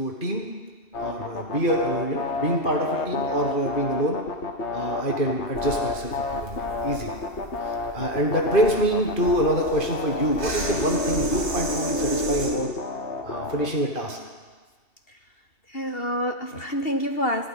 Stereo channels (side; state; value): right; late; 2.7 ms